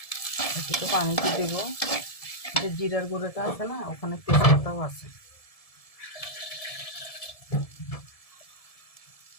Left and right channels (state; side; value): late; right; 1.7 ms